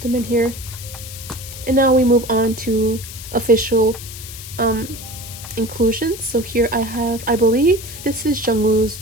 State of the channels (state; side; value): noise; left; hiss, 12 dB below the sound